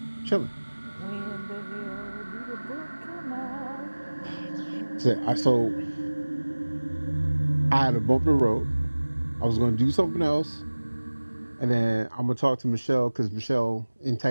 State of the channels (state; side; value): inverted; both; correlation -1.00